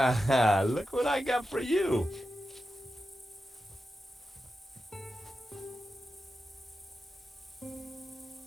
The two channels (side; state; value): both; normal; correlation 0.90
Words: Look what I got for you.